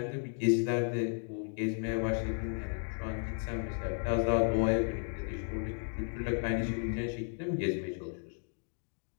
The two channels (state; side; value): silent; right; 55 dB below the other